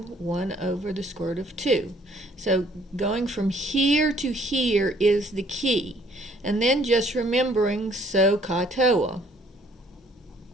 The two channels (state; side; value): normal; both; correlation 0.61